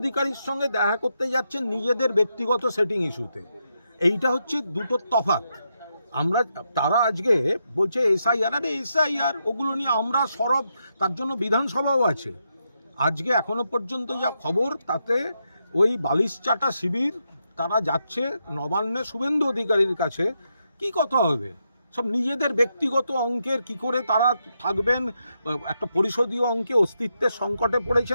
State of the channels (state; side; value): inverted; both; correlation -0.83